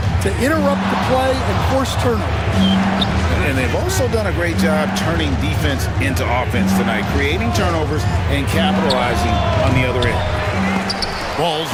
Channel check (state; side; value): identical; both; correlation 1.00